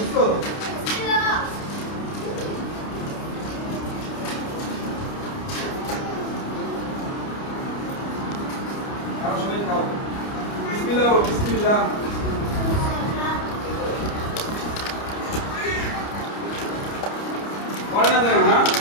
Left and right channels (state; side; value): late; right; 29 ms